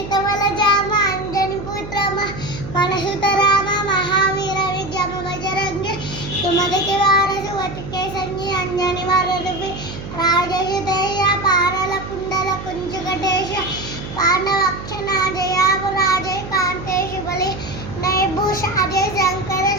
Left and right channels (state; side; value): noise; right; hum, 10 dB below the sound